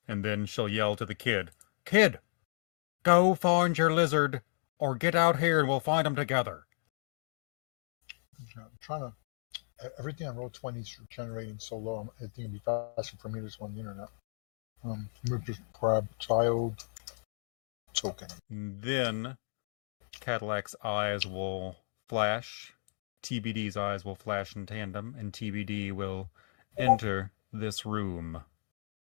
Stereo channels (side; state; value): right; silent; digital silence